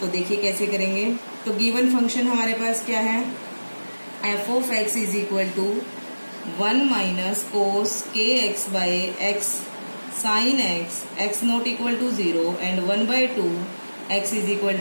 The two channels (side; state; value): both; inverted; correlation -1.00